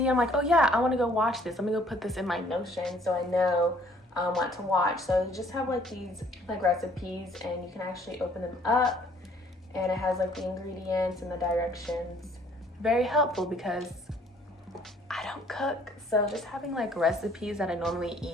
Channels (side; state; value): both; normal; correlation 0.60